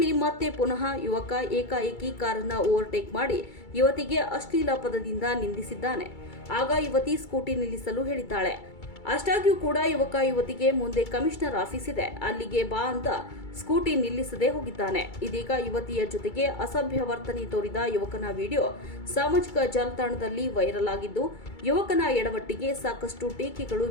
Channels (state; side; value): late; right; 2.3 ms